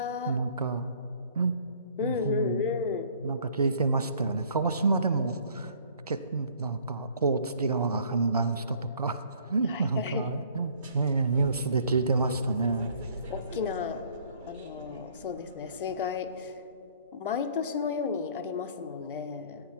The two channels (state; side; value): inverted; both; correlation -0.57